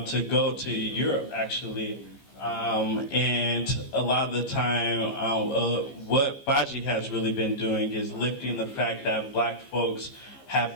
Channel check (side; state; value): right; late; 15 ms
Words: go to Europe, actually. And a lot of the time, what Baji has really been doing is lifting the fact that black folks